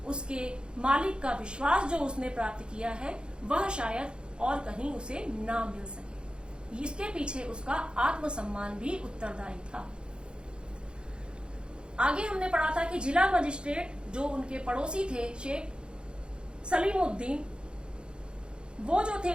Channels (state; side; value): late; left; 0.052 ms